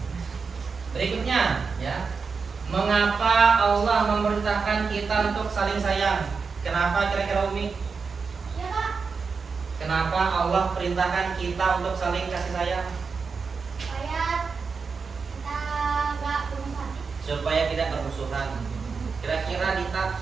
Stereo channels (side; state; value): left; quieter; 5.1 dB